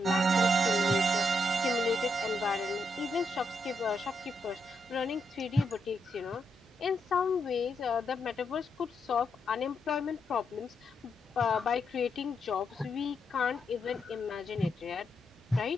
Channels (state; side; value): normal; both; correlation 0.81